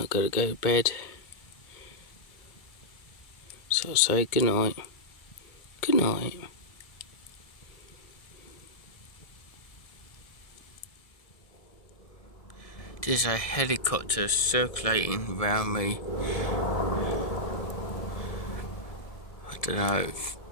got to go to bed. So I'll say good night. Good night. There's a helicopter circulating around me. I don't know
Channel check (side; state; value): right; late; 1.6 ms